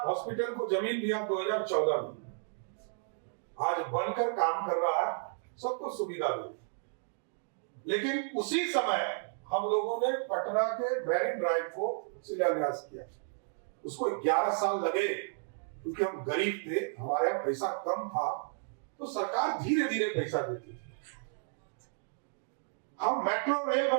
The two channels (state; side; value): silent; left; digital silence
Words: हॉस्पिटल को जमीन दिया 2014 में, आज बनकर काम कर रहा है, सबको सुविधा दी। लेकिन उसी समय हम लोगों ने पटना के मैरिन ड्राइव को शिलान्यास किया, उसको 11 साल लगे क्योंकि हम गरीब थे, हमारे यहाँ पैसा कम था, तो सरकार धीरे धीरे पैसा देती थी। हम मेट्रो रेल